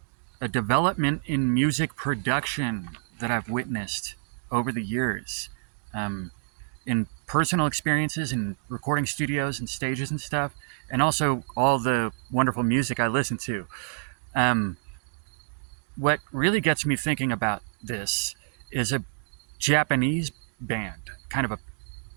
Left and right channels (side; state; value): left; silent; digital silence